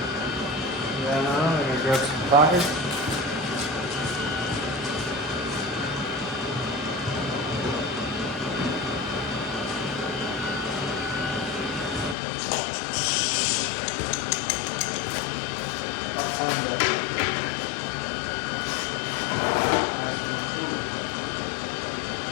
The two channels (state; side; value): drops out; right; at 12.2 s